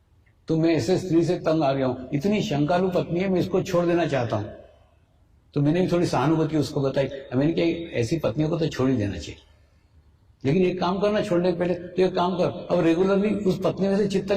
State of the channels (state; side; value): identical; both; correlation 1.00